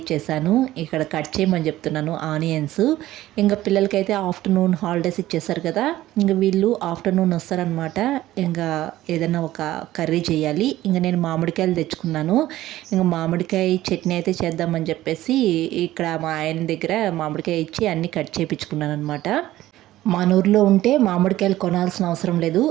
ఇక్కడ కట్ చేయమని చెప్తున్నాను ఆనియన్స్. ఇంకా పిల్లలకైతే ఆఫ్టర్నూన్ హాలిడేస్ ఇచ్చేసారు కదా, ఇంకా వీళ్ళు ఆఫ్టర్నూన్ వస్తారనమాట. ఇంకా ఏదైనా ఒక కర్రీ చేయాలి. ఇంకా నేను మామిడికాయలు తెచ్చుకున్నాను. ఇంకా మామిడికాయ చట్నీ అయితే చేద్దామని చెప్పేసి ఇక్కడ మా ఆయన దగ్గర మామిడికాయ ఇచ్చి అన్నీ కట్ చేయించుకున్నాను అనమాట. మన ఊర్లో ఉంటే మామిడికాయలు కొనాల్సిన అవసరం లేదు.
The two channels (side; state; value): left; quieter; 15.1 dB